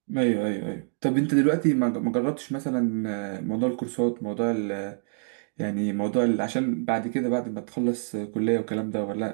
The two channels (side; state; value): left; silent; 61 dB below the other